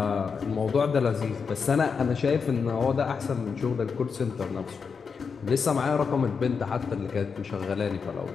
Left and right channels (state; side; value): quieter; right; 5.7 dB